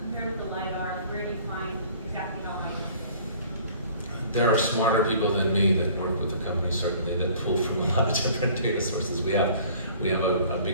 Compared with the LiDAR, where do you find exactly how high it is? There are smarter people than me that work with the company, certainly, that pull from a lot of different data sources. We have a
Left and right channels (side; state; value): both; inverted; correlation -0.51